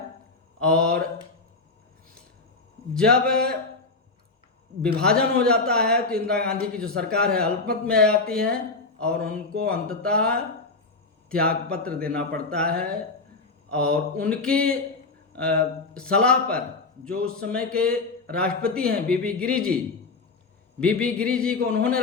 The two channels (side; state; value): right; quieter; 3.7 dB